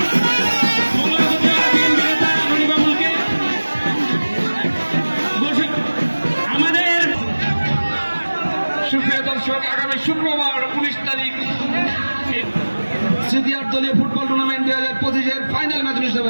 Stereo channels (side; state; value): both; inverted; correlation -1.00